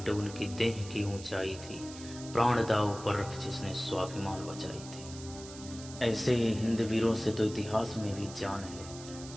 उनकी देह की ऊंचाई थी, प्राण दाव पर रख जिसने स्वाभिमान बचाई थी। ऐसे ही हिंद वीरों से तो इतिहास में भी जान है,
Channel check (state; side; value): noise; right; hiss, 15 dB below the sound